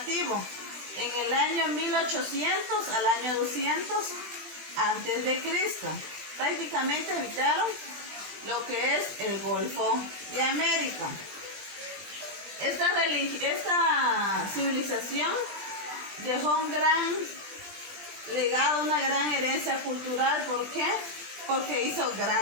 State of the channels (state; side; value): late; left; 20 ms